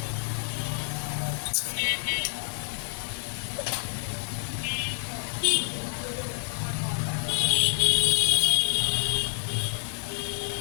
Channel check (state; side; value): silent; right; digital silence